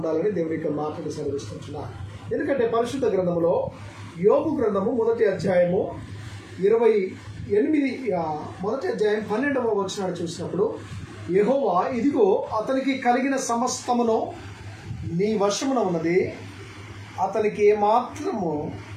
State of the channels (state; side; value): identical; both; correlation 1.00